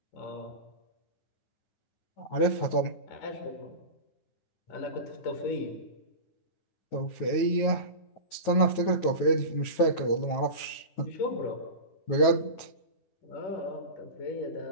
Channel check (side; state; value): right; late; 9.4 ms